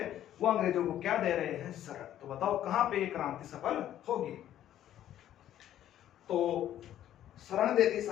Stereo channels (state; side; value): quieter; right; 11.7 dB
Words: वो अंग्रेजों को क्या दे रहे हैं? शरण। तो बताओ कहां पे ये क्रांति सफल होगी? तो शरण दे दी